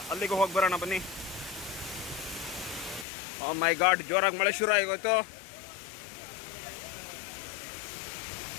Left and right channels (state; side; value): drops out; right; at 3.1 s